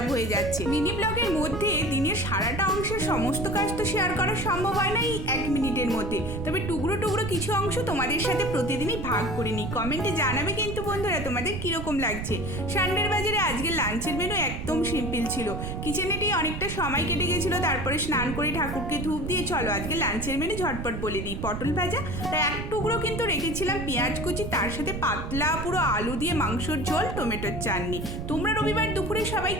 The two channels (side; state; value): right; noise; rumble, 5 dB below the sound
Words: হয়ে যাচ্ছে। মিনি ব্লগের মধ্যে দিনের সারাটা অংশের সমস্ত কাজ তো শেয়ার করা সম্ভব হয় না এই 1 মিনিটের মধ্যে, তবে টুকরো টুকরো কিছু অংশ তোমাদের সাথে প্রতিদিনই ভাগ করে নিই। কমেন্টে জানাবে কিন্তু বন্ধুরা তোমাদের কিরকম লাগছে। সানডের বাজারে আজকে লাঞ্চের মেনু একদম সিম্পল ছিল। কিচেনেতেই অনেকটা সময় কেটে গেছিলো, তারপরে স্নান করে ঠাকুরকে ধূপ দিয়ে চলো আজকে লাঞ্চের মেনু ঝটপট বলে দিই। পটল ভাজা, তাই এক টুকরো কিন্তু রেখেছিলাম পেঁয়াজ কুচি, তার সাথে পাতলা পুরো আলু দিয়ে মাংসর ঝোল, টমেটোর চাটনি। তোমরা রবিবার দুপুরে সবাই